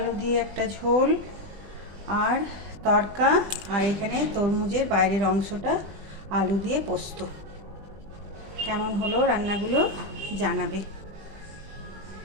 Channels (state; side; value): late; left; 20 ms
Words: দিয়ে একটা ঝোল আর তড়কা, আর এখানে তরমুজের বাইরের অংশটা আলু দিয়ে পোস্ত। কেমন হলো রান্নাগুলো জানাবে।